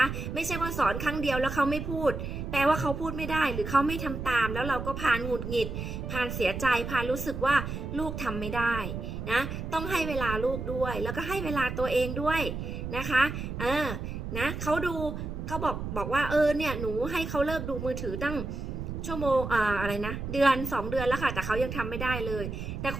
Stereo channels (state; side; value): noise; right; rumble, 5 dB below the sound